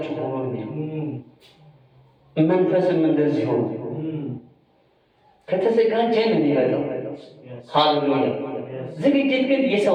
ሆኖ ነው። መንፈስም እንደዚህ ሆኖ ከተዘጋጀን የሚመጣው ሃሌሉያ። ዝግጅት ግን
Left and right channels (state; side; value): identical; both; correlation 1.00